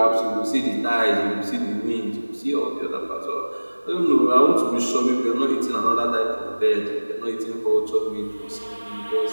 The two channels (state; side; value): inverted; both; correlation -1.00